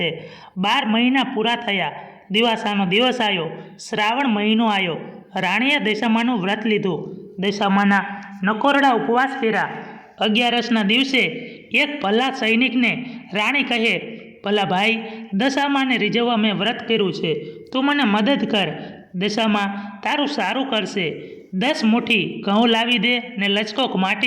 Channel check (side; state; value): both; identical; correlation 1.00